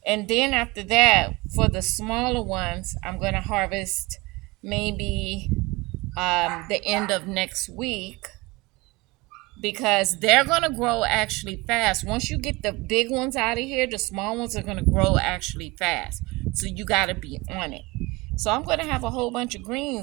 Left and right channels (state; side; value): quieter; left; 23.0 dB